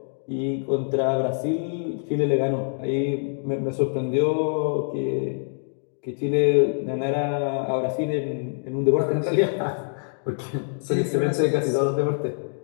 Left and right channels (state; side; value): silent; right; digital silence